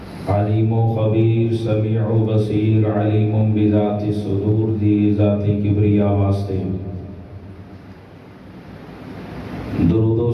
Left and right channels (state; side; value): identical; both; correlation 1.00